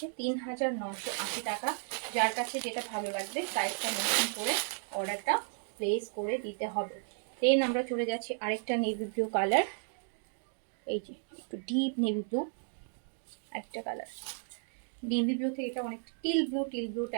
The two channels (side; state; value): left; silent; 55 dB below the other